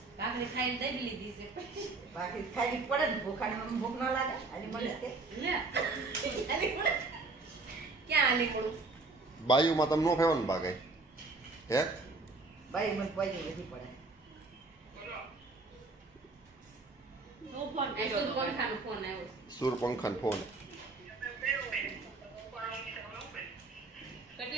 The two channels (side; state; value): left; quieter; 3.6 dB